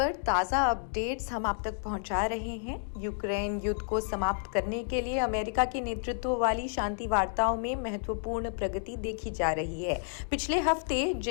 ताज़ा अपडेट्स हम आप तक पहुंचा रहे हैं। यूक्रेन युद्ध को समाप्त करने के लिए अमेरिका के नेतृत्व वाली शांति वार्ताओं में महत्वपूर्ण प्रगति देखी जा रही है। पिछले हफ्ते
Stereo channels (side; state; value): right; silent; digital silence